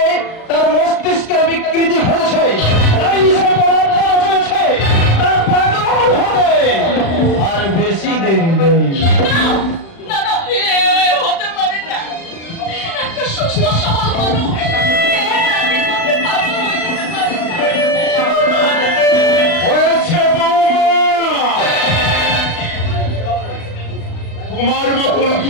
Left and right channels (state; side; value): late; right; 36 ms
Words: তার মস্তিষ্কের বিকৃতি ঘটেছে, তাই সে পরামর্শ চলেছে তার পাগল হবে। আর বেশি দেরি নেই। না না, হতে পারে না। একটা সুস্থ সবল মানুষ হয়েছে বৌমা, তোমার মতন